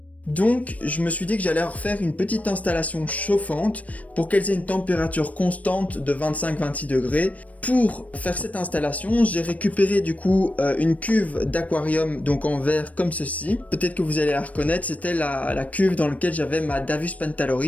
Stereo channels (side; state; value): right; late; 0.068 ms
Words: Donc je me suis dit que j'allais refaire une petite installation chauffante pour qu'elles aient une température constante de 25-26 degrés. Pour faire cette installation, j'ai récupéré du coup une cuve d'aquarium, donc en verre comme ceci. Peut-être que vous allez la reconnaître, c'était la cuve dans laquelle j'avais ma Davus